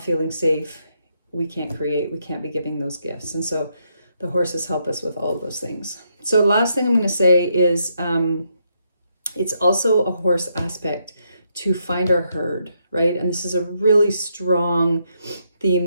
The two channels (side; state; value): both; inverted; correlation -0.78